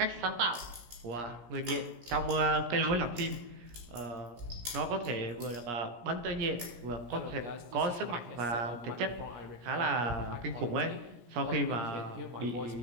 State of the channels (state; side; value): late; left; 17 ms